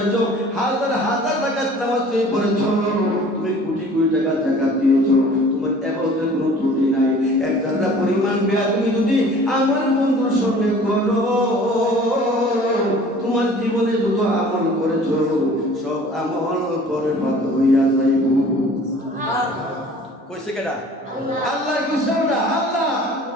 হাজার হাজার টাকা নামাজ তুমি পড়েছো, তুমি কোটি কোটি টাকা যাকাত দিয়েছো, তোমার ইবাদতের কোনো ত্রুটি নাই। এক জায়গা পরিমাণ বেয়াদবি যদি আমার বন্ধুর সঙ্গে করো, তোমার জীবনে যত আমল করেছো সব আমল পরে বাদ হইয়া যাইব। কইছে কেডা? আল্লাহ কইছে না? আল্লাহ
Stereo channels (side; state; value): both; normal; correlation 0.48